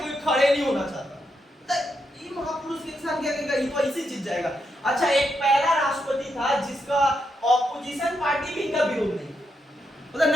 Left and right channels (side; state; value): both; normal; correlation 0.82